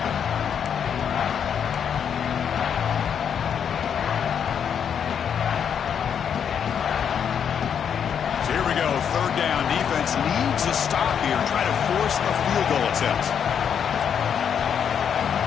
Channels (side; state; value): right; quieter; 7.9 dB